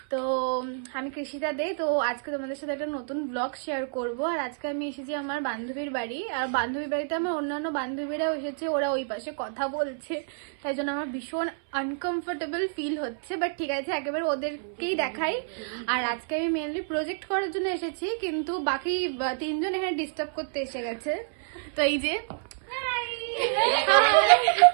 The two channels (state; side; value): silent; left; 59 dB below the other